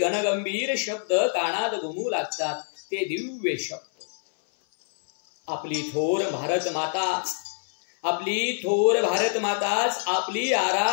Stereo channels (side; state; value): right; silent; 60 dB below the other